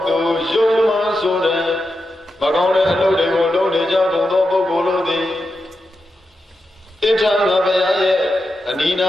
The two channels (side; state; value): both; normal; correlation 0.88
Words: သူယုံမှဆိုတဲ့မကောင်းတဲ့အလုပ်တွေကိုလုပ်နေကြကုန်သောပုဂ္ဂိုလ်တို့သည်ဣဋ္ဌာငါဘုရားရဲ့အနိနာ